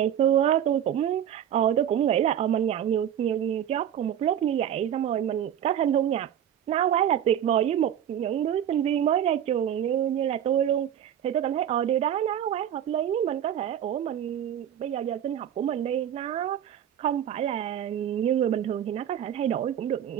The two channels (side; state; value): left; quieter; 9.9 dB